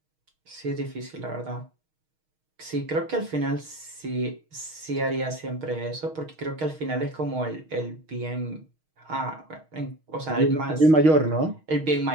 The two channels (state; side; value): late; left; 6.4 ms